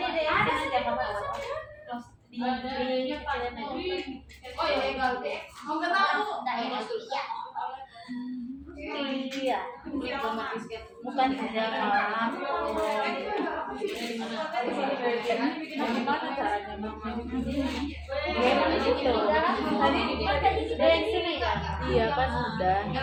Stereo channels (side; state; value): both; identical; correlation 1.00